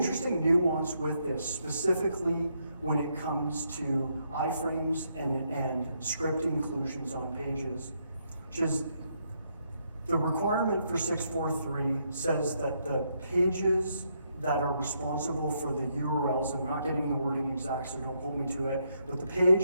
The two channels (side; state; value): both; inverted; correlation -0.76